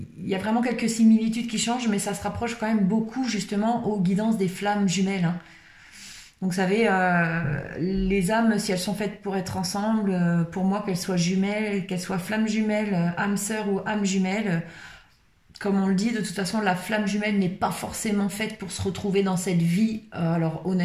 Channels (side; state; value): both; identical; correlation 1.00